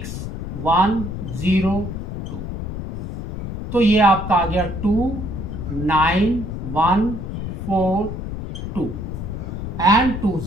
तो ये आपका आ गया 29142 एंड 2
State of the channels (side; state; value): left; noise; rumble, 6 dB below the sound